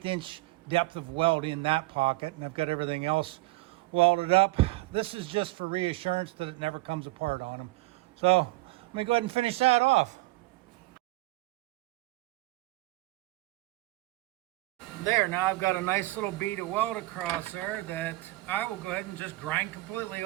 inch depth of weld in that pocket, and I've got everything else welded up. This is just for reassurance that it never comes apart on them. So let me go ahead and finish that off. There, now I've got a nice little bead of weld across there that I will go ahead and just grind completely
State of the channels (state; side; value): quieter; left; 20.8 dB